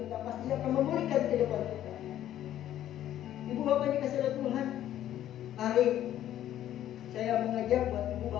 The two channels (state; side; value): quieter; right; 12.0 dB